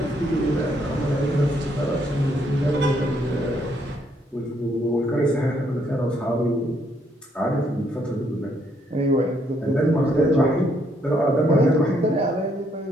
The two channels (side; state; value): both; normal; correlation 0.71